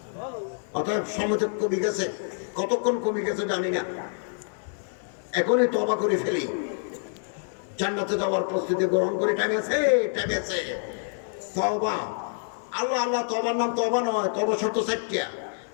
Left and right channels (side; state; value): right; silent; 60 dB below the other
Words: অতএব সময় কমে গেছে। কতক্ষণ কমে গেছে জানি না। এখনই তওবা করে ফেলি, জান্নাতে যাওয়ার প্রস্তুতি গ্রহণ করে। টাইম আছে। তওবা, আল্লাহ তওবার নাম তওবা নয়। তওবা শর্ত 4টা।